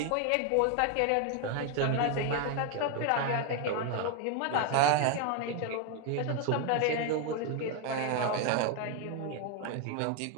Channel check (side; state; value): both; different; correlation 0.01